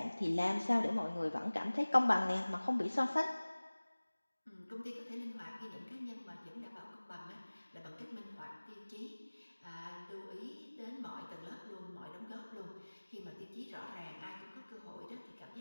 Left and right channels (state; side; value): inverted; both; correlation -1.00